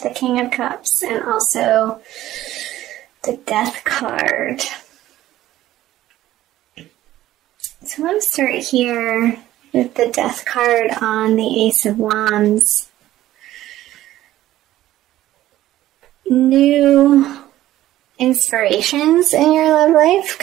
the King of Cups, and also the Death card. So I want to start here with the Death card on the Ace of Wands. New inspirations in your love life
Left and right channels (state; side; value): quieter; left; 14.3 dB